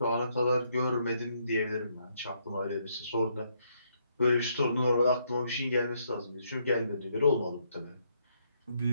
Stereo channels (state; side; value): inverted; both; correlation -0.73